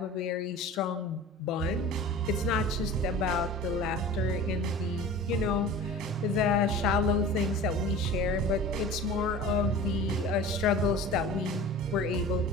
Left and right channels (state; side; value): normal; both; correlation 0.39